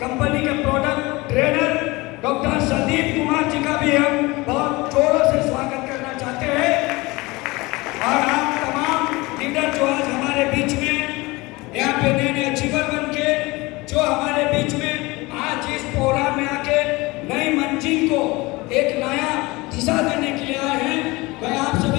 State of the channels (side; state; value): right; quieter; 22.7 dB